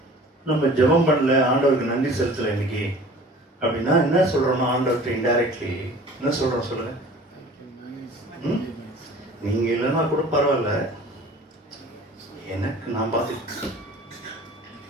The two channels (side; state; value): both; normal; correlation 0.45